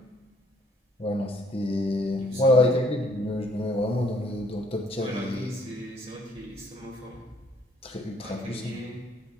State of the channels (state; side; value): normal; both; correlation 0.64